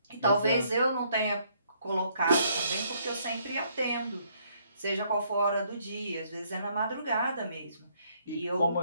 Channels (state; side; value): inverted; both; correlation -0.68